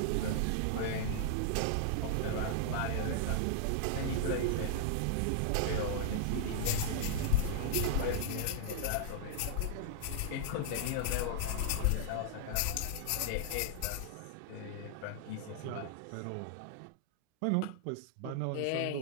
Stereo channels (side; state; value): both; different; correlation -0.01